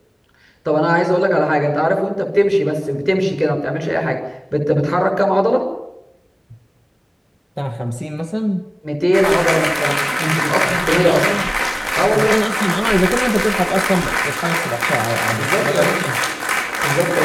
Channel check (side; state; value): both; identical; correlation 1.00